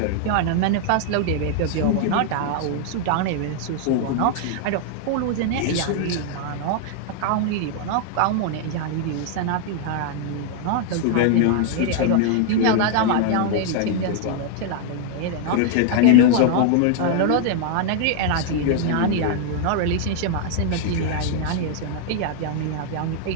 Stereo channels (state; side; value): different; both; correlation 0.00